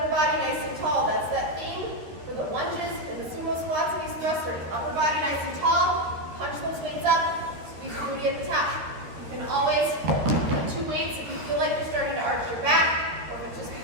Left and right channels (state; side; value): late; left; 13 ms